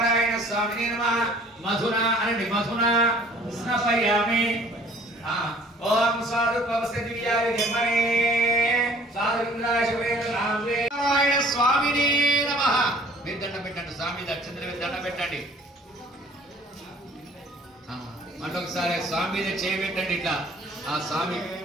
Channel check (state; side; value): normal; both; correlation 0.53